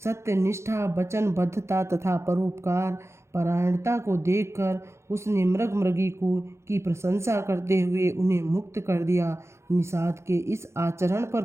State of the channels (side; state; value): left; late; 0.13 ms